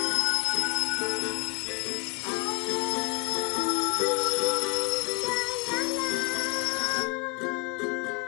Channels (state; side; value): quieter; right; 30.1 dB